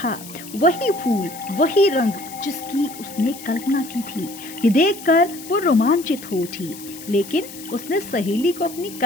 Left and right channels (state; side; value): noise; left; hiss, 15 dB below the sound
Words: वही फूल, वही रंग जिसकी उसने कल्पना की थी। ये देखकर वो रोमांचित हो उठी, लेकिन उसने सहेली को अपनी